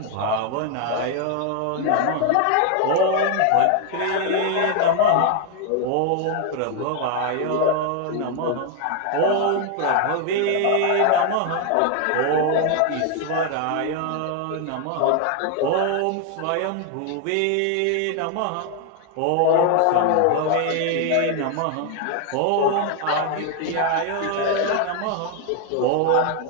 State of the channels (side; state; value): both; different; correlation 0.01